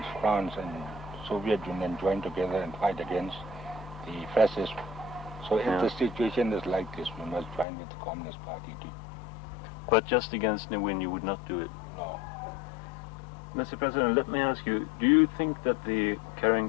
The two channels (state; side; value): drops out; right; at 7.7 s